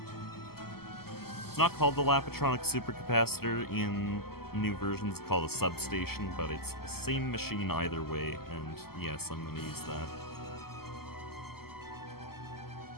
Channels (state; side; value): late; right; 0.95 ms